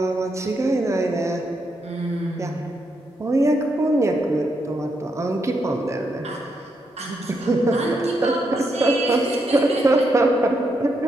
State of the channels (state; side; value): normal; both; correlation 0.80